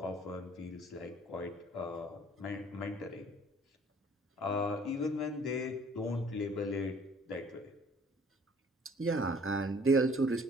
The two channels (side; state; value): both; normal; correlation 0.55